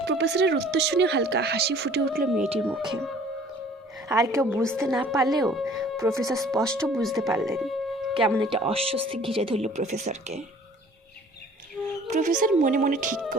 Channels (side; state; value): both; normal; correlation 0.52